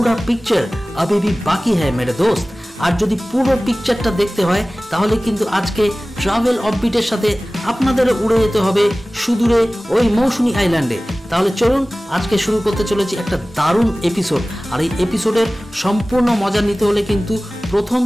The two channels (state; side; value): normal; both; correlation 0.98